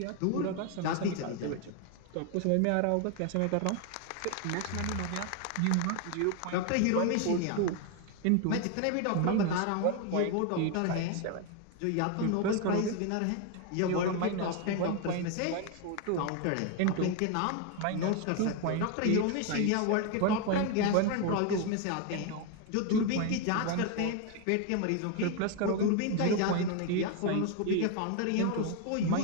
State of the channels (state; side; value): different; both; correlation 0.01